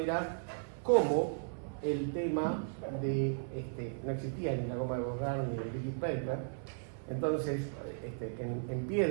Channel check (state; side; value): silent; left; 54 dB below the other